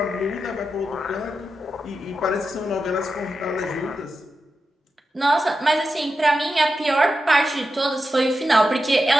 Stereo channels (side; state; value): both; normal; correlation 0.90